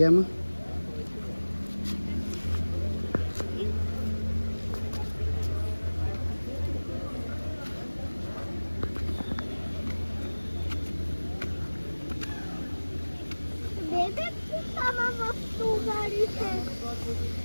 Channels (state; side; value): inverted; both; correlation -1.00